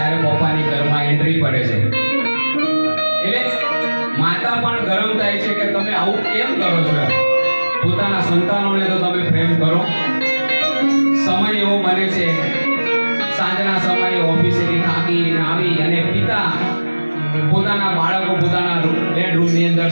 પપ્પાની ઘરમાં એન્ટ્રી પડે છે. એટલે માતા પણ ગરમ થાય છે કે તમે આવું કેમ કરો છો. પોતાના સંતાનોને તો તમે પ્રેમ કરો. સમય એવો બને છે, સાંજના સમયે ઓફિસેથી થાકીને આવી અને પિતા પોતાના બાળકો પોતાના બેડરૂમની અંદર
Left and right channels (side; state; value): both; inverted; correlation -1.00